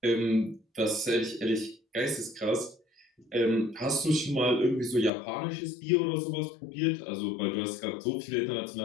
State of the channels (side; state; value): right; drops out; at 5.1 s